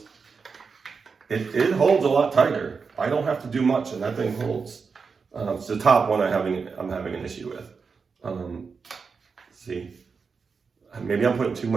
it holds a lot tighter. I don't have to do much and that thing holds. It's the top one I'm having an issue with. See, maybe I'm putting too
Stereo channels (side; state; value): left; quieter; 5.2 dB